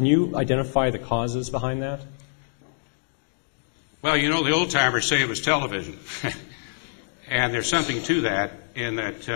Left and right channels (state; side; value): silent; right; digital silence